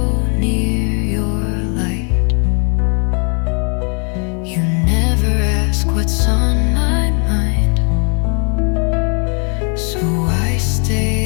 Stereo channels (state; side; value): quieter; right; 38.8 dB